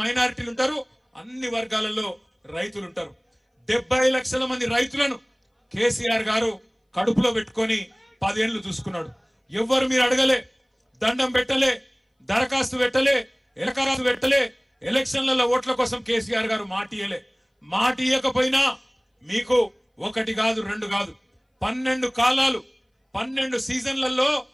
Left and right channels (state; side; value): identical; both; correlation 1.00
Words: మైనారిటీలు ఉంటారు, అన్ని వర్గాలలో రైతులు ఉంటారు. 70 లక్షల మంది రైతులను కేసీఆర్ గారు కడుపులో పెట్టుకొని 10 ఏళ్లు చూసుకున్నాడు. ఎవ్వరు మీరు అడగలే, దండం పెట్టలే, దరఖాస్తు పెట్టలే, ఎలకరాసు పెట్టలే, ఎలక్షన్లలో ఓట్ల కోసం కేసీఆర్ గారు మాట ఇయ్యకపోయినా మీకు 1 కాదు 2 కాదు 12 కాలాలు 12 సీజన్లలో